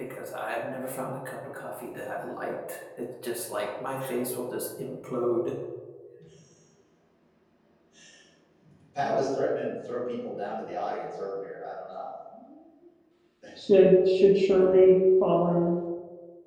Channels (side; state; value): both; identical; correlation 1.00